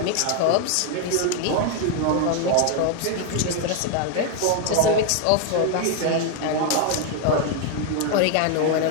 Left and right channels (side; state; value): both; different; correlation 0.01